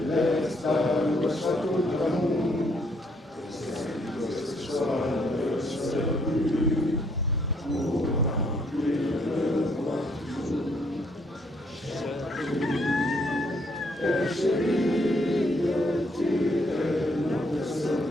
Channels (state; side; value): normal; both; correlation 0.69